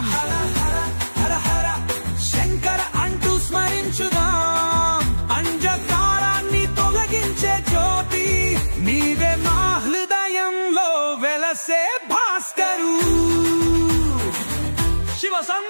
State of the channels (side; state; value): both; inverted; correlation -1.00